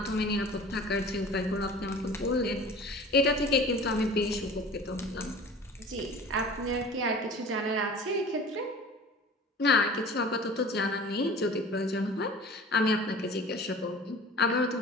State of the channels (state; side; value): normal; both; correlation 0.42